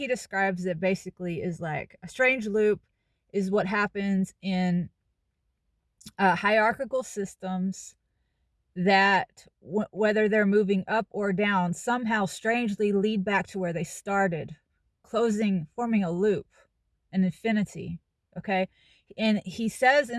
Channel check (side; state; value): both; identical; correlation 1.00